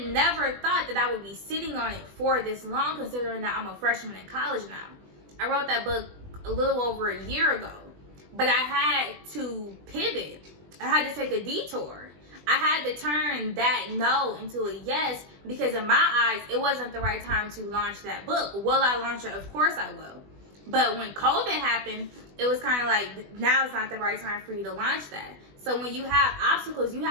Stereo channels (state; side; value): late; left; 20 ms